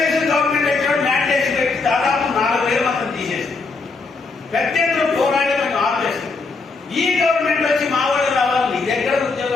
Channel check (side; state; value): right; quieter; 4.1 dB